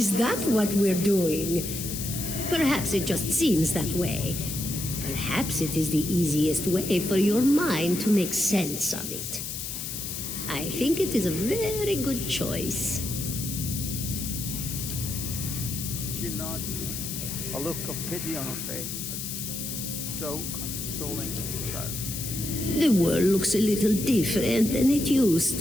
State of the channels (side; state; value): left; noise; hiss, 6 dB below the sound